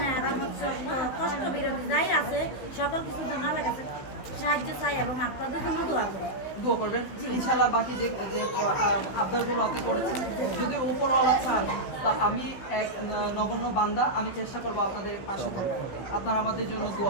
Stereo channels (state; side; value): late; right; 16 ms